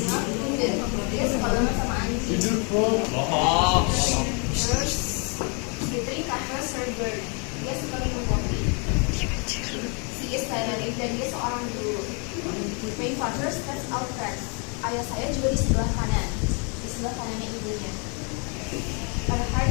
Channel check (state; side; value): quieter; right; 35.7 dB